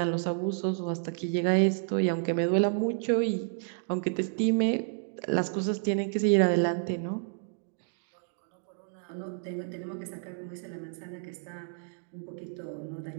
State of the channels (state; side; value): silent; left; digital silence